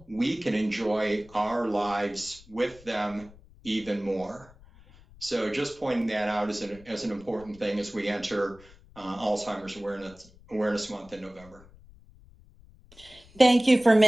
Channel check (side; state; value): left; noise; rumble, 24 dB below the sound